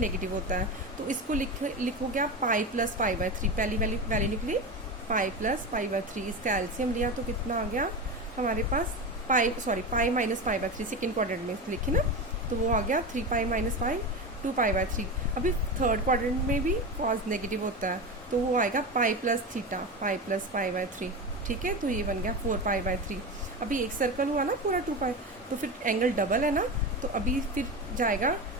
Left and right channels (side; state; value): both; normal; correlation 0.22